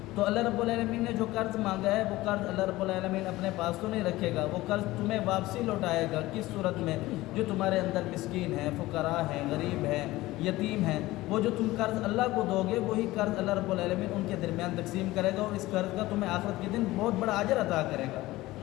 تو اللہ رب العالمین نے جو قرض مانگا ہے وہ قرض اللہ رب العالمین اپنے پاس تو نہیں رکھے گا، وہ قرض تمہیں واپسی لوٹائے گا. کس صورت میں؟ جو تمہارے اندر مسکین ہیں، فقراء ہیں، غریب ہیں، یتیم ہیں، وہ جو تم قرض اللہ کو دو گے وہی قرض اللہ رب العالمین ان کے درمیان تقسیم کرے گا، اور اس قرض کا تمہیں آخرت کے دن بہت بڑا اجر عطا کرے گا.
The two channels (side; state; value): right; quieter; 18.1 dB